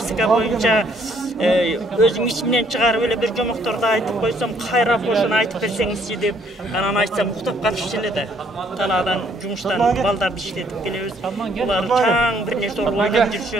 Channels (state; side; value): normal; both; correlation 0.65